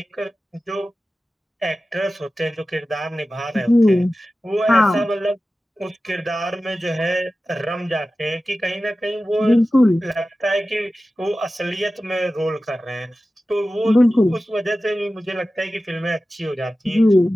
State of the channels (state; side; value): normal; both; correlation 0.95